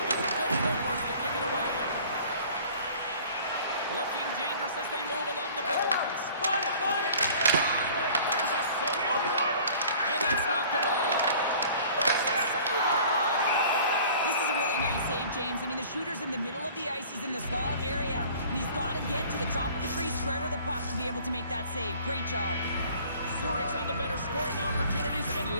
a good footwork to kick it away. Looking dangerous as they move along the boards. Find it! There's a save. And that's knocked away. This is a really nice save, James. I mean, the shooter's in the middle of the ice. He's in the slot area, and he's got to get to the top of the crease square to the puck to be able to make that save. Great job. Zurich's had the better scoring opportunities, and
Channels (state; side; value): inverted; both; correlation -0.48